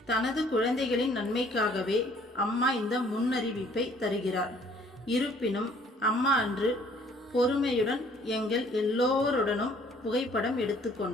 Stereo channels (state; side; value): normal; both; correlation 0.59